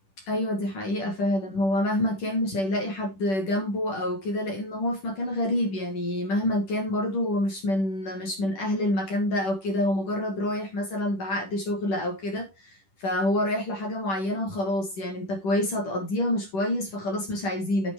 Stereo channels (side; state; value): right; late; 10 ms